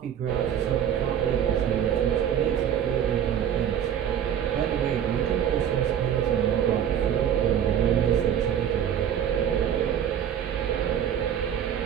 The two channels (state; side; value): quieter; left; 9.3 dB